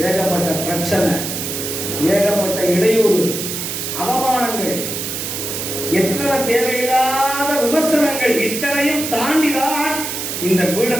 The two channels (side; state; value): right; noise; hiss, 4 dB below the sound